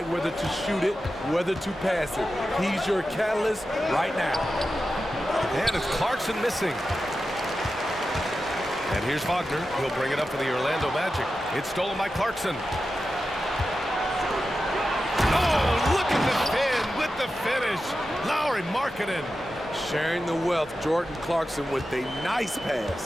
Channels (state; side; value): normal; both; correlation 0.92